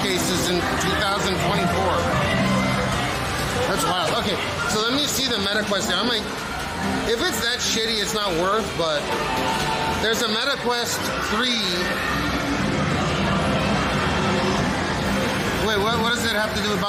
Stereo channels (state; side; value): identical; both; correlation 1.00